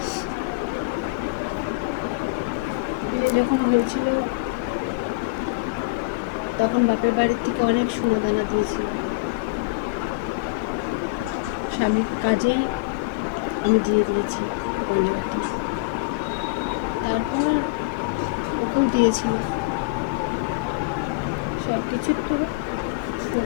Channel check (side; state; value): right; quieter; 24.8 dB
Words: বিয়ে যখন হয়েছিল তখন বাপের বাড়ির থেকে অনেক সোনা দানা দিয়েছিল। স্বামীর কাজেই আমি দিয়ে দিয়েছি গয়নাগাটি। তারপর ওকেও দিয়েছিল সব কিছু। তো